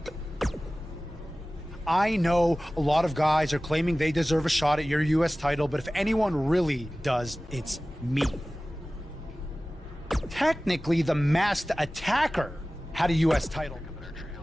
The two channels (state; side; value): normal; both; correlation 0.97